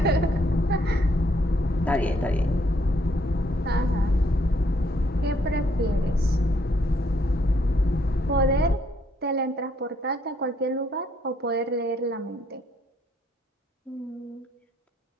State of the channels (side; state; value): both; normal; correlation 0.70